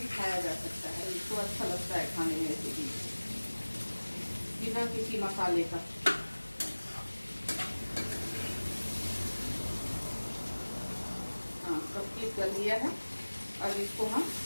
खाया जा सकता है, इसको अच्छा लगता है खाने में ऐसे भी बिना किसी मसाले का। हाँ, कंप्लीट कर लिया है। अब इसको हम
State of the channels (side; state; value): both; inverted; correlation -1.00